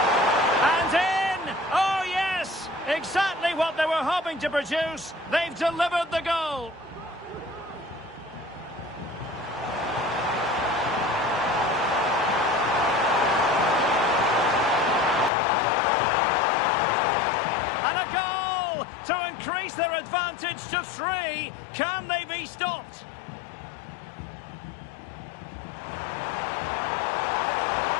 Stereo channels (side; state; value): right; drops out; at 15.3 s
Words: And in! Oh, yes! Exactly what they were hoping to produce. They've delivered the goal. And a goal to increase their their advantage to 3. Can they be stopped?